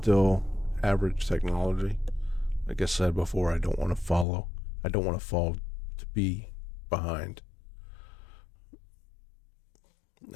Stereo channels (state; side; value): drops out; right; at 4.2 s